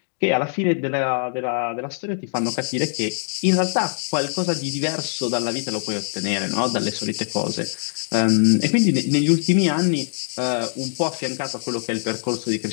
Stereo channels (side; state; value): right; silent; digital silence